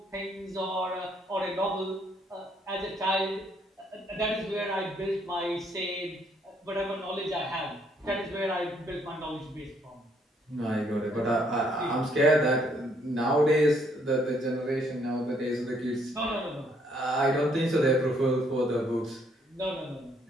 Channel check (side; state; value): both; normal; correlation 0.68